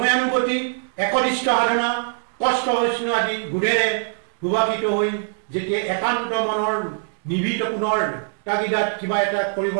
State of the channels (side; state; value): left; silent; digital silence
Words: একনিষ্ঠ সাধনা, কষ্ট হৈষ্ণু আদি গুণেৰে সুভাষিত হৈ যেতিয়া একান্ত মনৰ নিভৃত পুনৰ তাগিদাত কিবা এটা